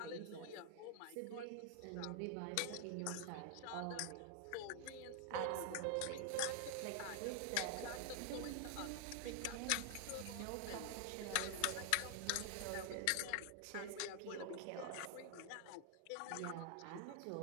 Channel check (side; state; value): both; different; correlation 0.00